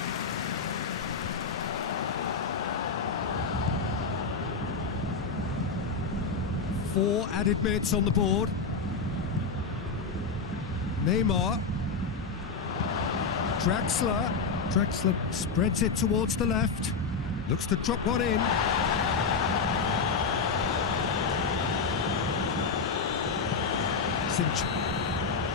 Four added minutes on the board. Neymar. Draxler spreads it towards the left. Looks to drop one in.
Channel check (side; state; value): right; quieter; 4.8 dB